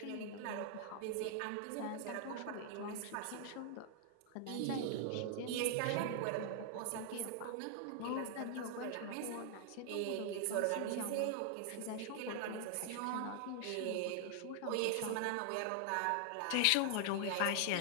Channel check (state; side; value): different; both; correlation 0.00